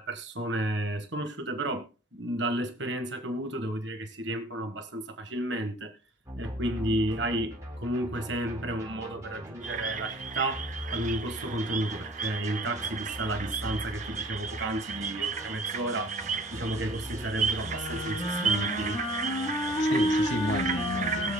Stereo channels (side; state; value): both; normal; correlation 0.51